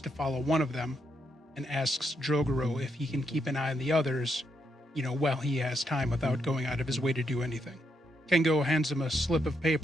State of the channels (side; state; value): both; normal; correlation 0.79